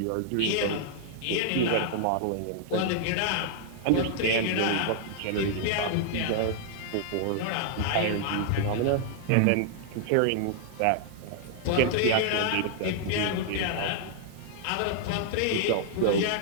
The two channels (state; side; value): different; both; correlation -0.01